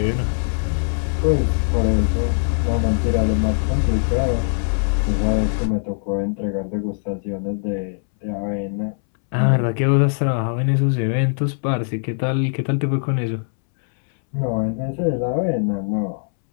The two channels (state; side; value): silent; right; 65 dB below the other